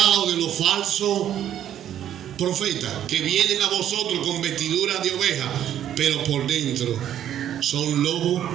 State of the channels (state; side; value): quieter; left; 10.7 dB